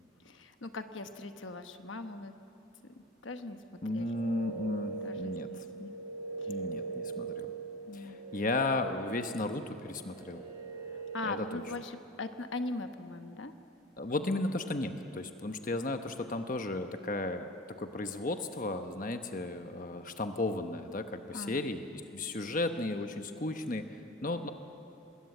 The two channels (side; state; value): both; normal; correlation 0.32